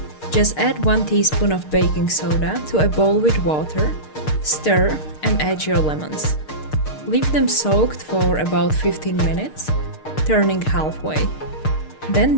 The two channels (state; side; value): late; right; 6.6 ms